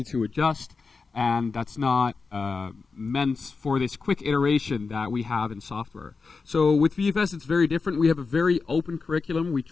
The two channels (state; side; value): quieter; right; 4.5 dB